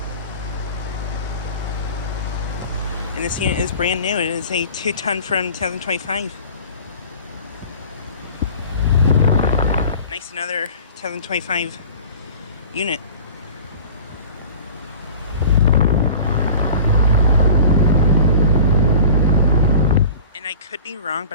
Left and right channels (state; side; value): inverted; both; correlation -0.41